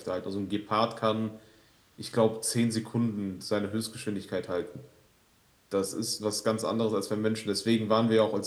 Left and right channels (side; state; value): both; identical; correlation 1.00